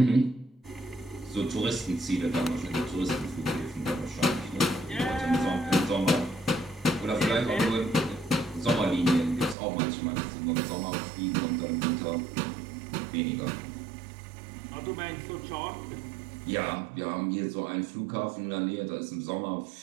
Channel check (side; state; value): left; drops out; at 9.6 s